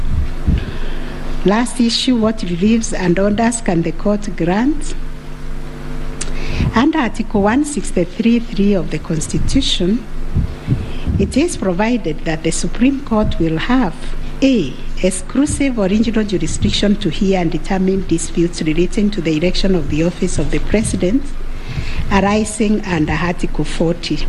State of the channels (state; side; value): identical; both; correlation 1.00